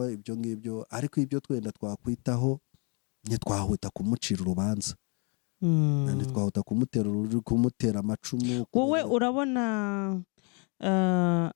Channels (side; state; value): right; quieter; 34.8 dB